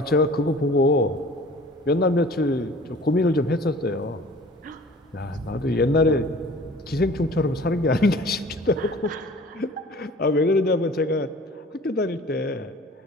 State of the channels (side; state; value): both; normal; correlation 0.46